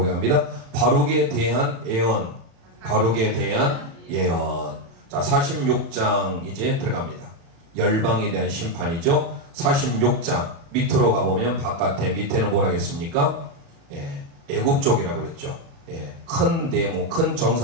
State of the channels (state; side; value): late; left; 36 ms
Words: 바룩에 대한 예언, 바룩에 대한 예언. 자, 46장 이제 들어갑니다. 열방에 대한 심판이죠. 46장 밑으로 가보면 바깥에 밑에는 뭐라 했습니까? 애굽 쪽이라고 그랬죠. 큰 네모, 큰